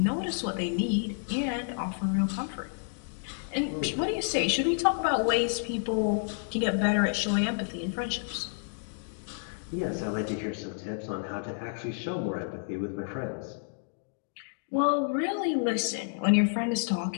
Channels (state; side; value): silent; right; digital silence